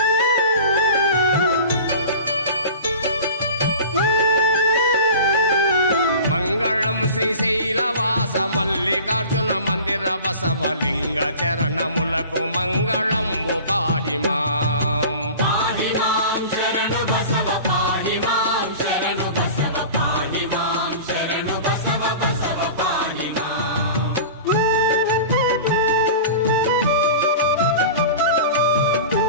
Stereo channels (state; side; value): inverted; both; correlation -0.37